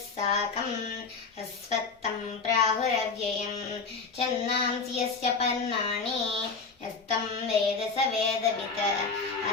साकम् अस्वत्थं प्राहुरव्ययम् छन्दांसि यस्य पर्णानि यस्तं वेद स वेदवित्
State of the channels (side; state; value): right; quieter; 4.6 dB